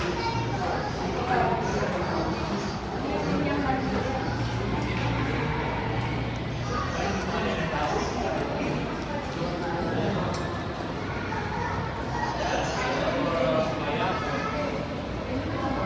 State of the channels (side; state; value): both; identical; correlation 1.00